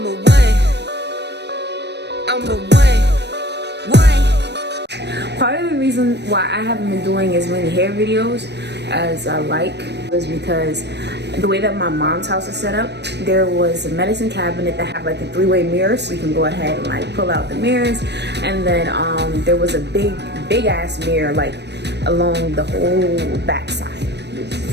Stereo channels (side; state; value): left; late; 0.50 ms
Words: a one. Part of the reason why I haven't been doing as many hair videos as I like is because the way that my mom's house is set up, there was a medicine cabinet that had like a three-way mirror, so you can go ahead and like pull out the mirrors, and then there was a big ass mirror like along the whole back side.